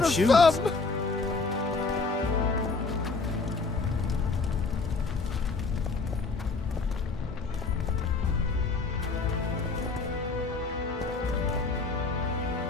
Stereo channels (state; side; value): quieter; right; 4.0 dB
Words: a shoes. thumb!